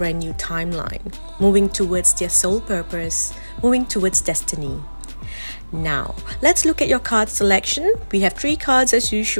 new timeline, moving towards their soul purpose, moving towards destiny. Now, let's look at your card selection. We have 3 cards as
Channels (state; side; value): inverted; both; correlation -1.00